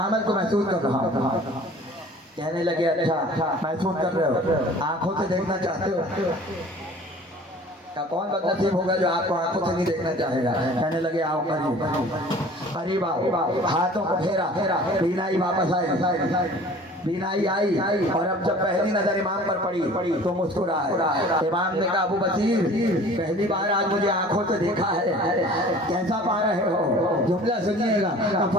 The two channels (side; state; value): both; normal; correlation 0.47